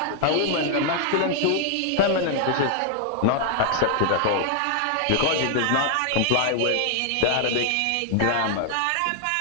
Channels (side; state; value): both; different; correlation 0.00